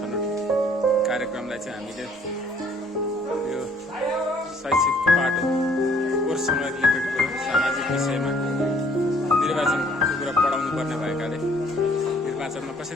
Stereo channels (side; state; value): both; normal; correlation 0.61